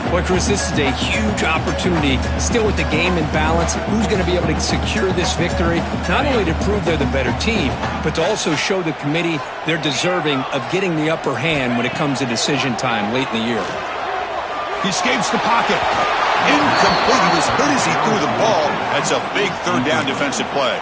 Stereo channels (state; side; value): identical; both; correlation 1.00